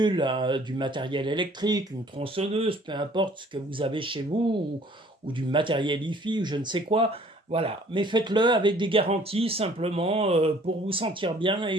du matériel électrique, une tronçonneuse, peu importe ce que vous avez chez vous, ou du matériel hi-fi, ou je ne sais quoi. Voilà, mais faites-le avec des garanties simplement pour vous sentir bien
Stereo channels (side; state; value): both; normal; correlation 0.56